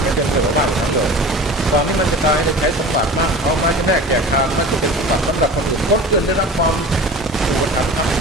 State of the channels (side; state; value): both; normal; correlation 0.37